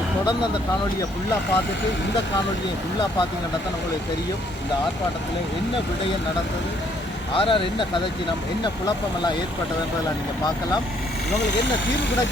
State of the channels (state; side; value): normal; both; correlation 0.66